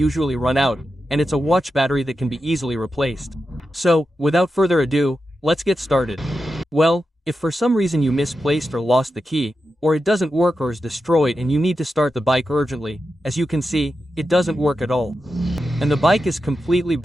run out, and it's a watch battery that can be easily replaced. So, without further ado, let's get started. Well, if for some reason you misplaced or lost the key, or it doesn't work or is destroyed and you need to start the bike urgently, as you can see, it doesn't work at all. And the bike is completely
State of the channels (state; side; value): normal; both; correlation 0.90